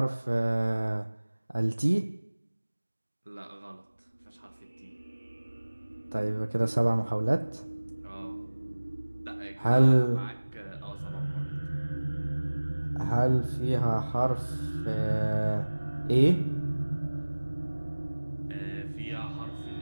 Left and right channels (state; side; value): inverted; both; correlation -1.00